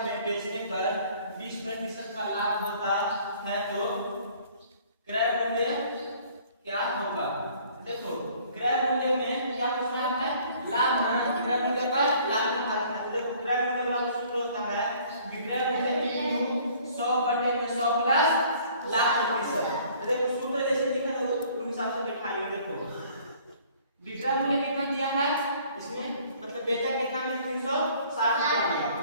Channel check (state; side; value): inverted; both; correlation -0.56